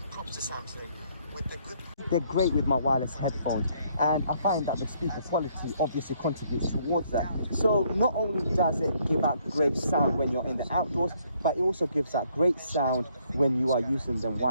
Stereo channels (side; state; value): both; inverted; correlation -0.68